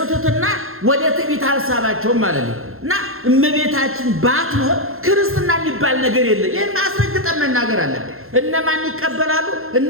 ትሕትና ወደ ትዕቢት አልሳባቸውም ማለት ነው። እና እመቤታችን ባትኖር ክርስትና የሚባል ነገር የለም። ይህን አስረግጠን መናገር አለብን። እነማን ይቀበላሉ?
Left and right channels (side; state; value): left; late; 0.61 ms